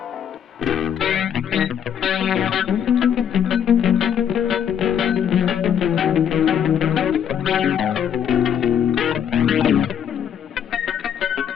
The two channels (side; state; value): right; quieter; 8.7 dB